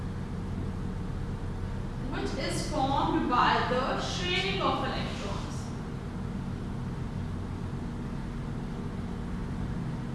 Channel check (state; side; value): identical; both; correlation 1.00